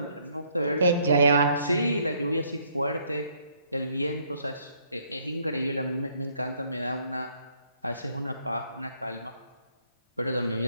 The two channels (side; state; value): both; inverted; correlation -0.68